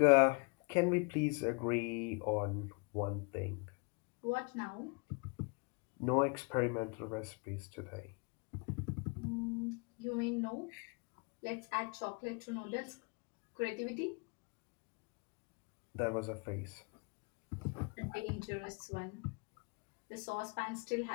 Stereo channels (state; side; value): quieter; right; 32.4 dB